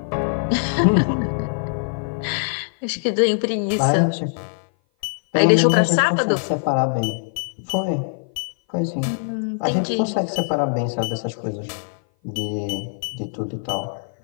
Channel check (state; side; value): silent; right; 57 dB below the other